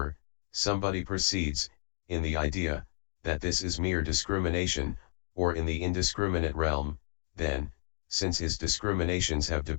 somebody proceeds, in the idea, that this is mere discrimination, or in the indiscriminate realm, then, since his discriminations have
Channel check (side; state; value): right; silent; digital silence